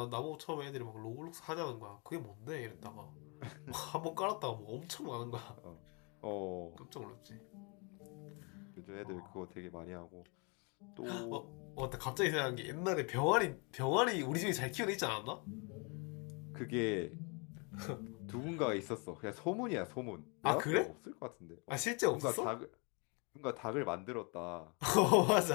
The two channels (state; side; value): quieter; right; 32.9 dB